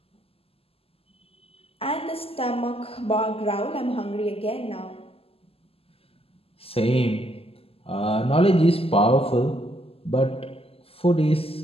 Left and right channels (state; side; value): late; right; 0.28 ms